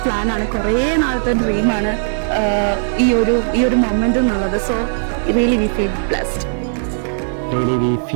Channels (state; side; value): silent; left; digital silence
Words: പ്ലാനാണ്, കുറേ നാളത്തെ ഡ്രീമാണ് ഈ ഒരു മൊമെന്റ് എന്നുള്ളത്. So really we feel blessed. Really we